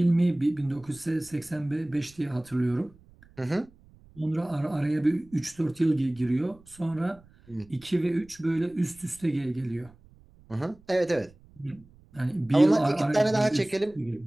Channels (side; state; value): right; noise; rumble, 26 dB below the sound